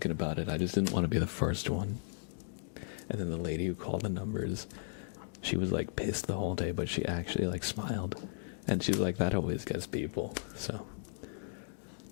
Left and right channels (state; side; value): silent; right; digital silence